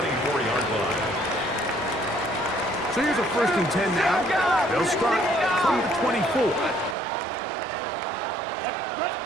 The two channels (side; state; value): left; drops out; at 7.0 s